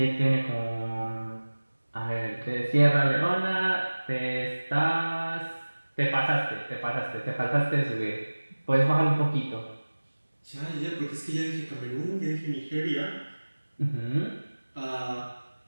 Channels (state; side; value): inverted; both; correlation -1.00